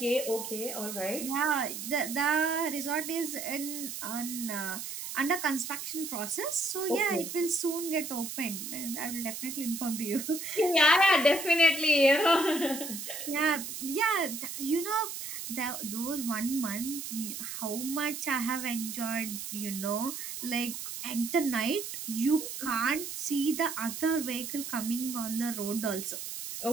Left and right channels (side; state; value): right; noise; hiss, 7 dB below the sound